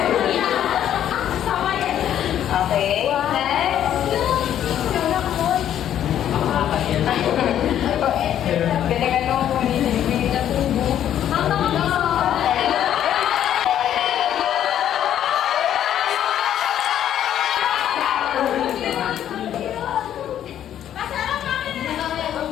Okay, next. Galingan mo kung hindi na tubo.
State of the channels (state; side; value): quieter; right; 10.6 dB